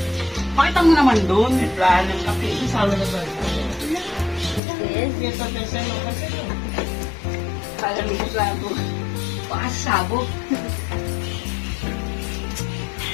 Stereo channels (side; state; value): right; drops out; at 4.6 s